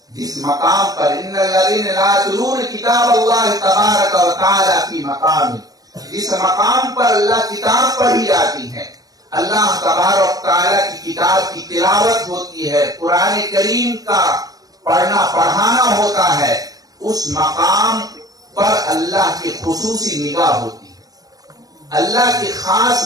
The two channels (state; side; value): late; left; 0.18 ms